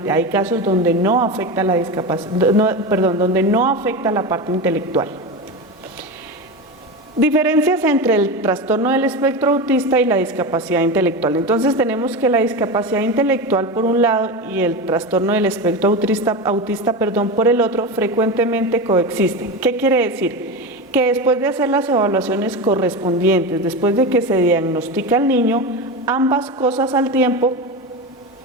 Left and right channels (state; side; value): normal; both; correlation 0.21